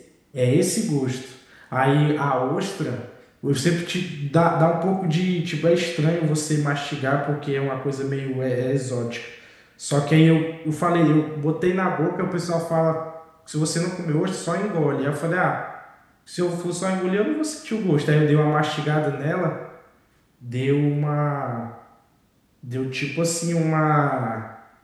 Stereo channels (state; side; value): identical; both; correlation 1.00